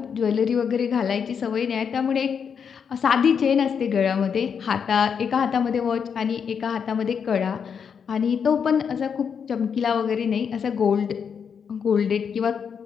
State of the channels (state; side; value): quieter; right; 6.9 dB